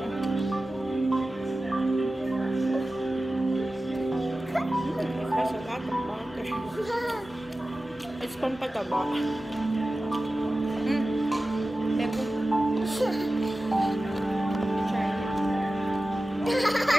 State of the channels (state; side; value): normal; both; correlation 0.95